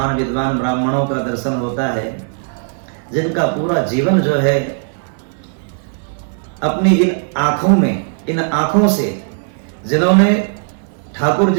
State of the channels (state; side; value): silent; left; 68 dB below the other